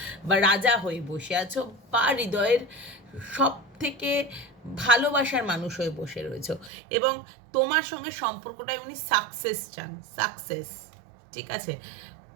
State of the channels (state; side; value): drops out; left; at 6.7 s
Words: বা রাজা হয়ে বসে আছো, বা হৃদয়ের সব থেকে ভালোবাসার মানুষ হয়ে বসে রয়েছো, এবং তোমার সঙ্গে সম্পর্কটাই উনি সাকসেস চান, সাকসেস, ঠিক আছে?